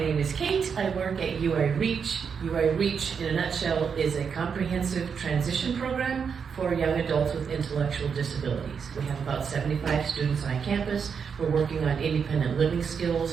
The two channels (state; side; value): quieter; left; 6.5 dB